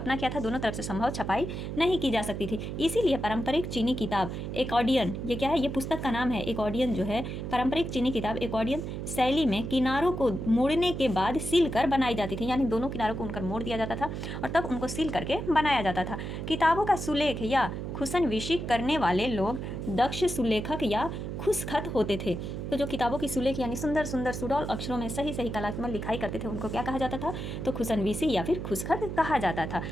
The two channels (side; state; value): right; noise; hum, 5 dB below the sound